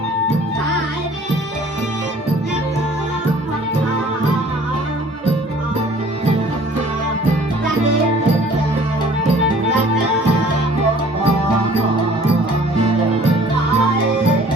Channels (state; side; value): normal; both; correlation 0.52